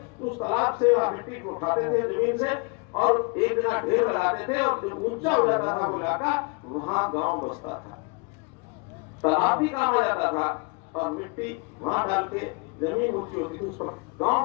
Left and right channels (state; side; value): quieter; right; 31.1 dB